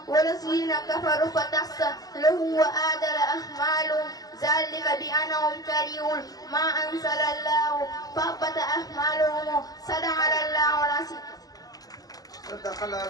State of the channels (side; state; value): right; late; 0.18 ms